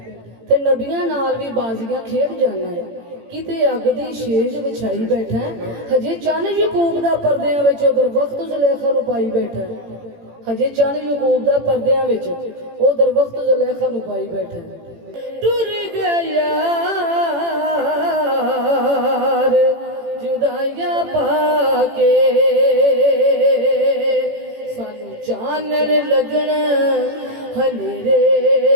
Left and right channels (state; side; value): late; left; 18 ms